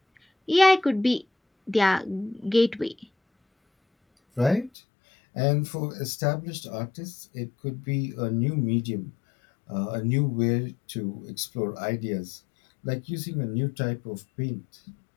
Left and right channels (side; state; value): right; drops out; at 4.7 s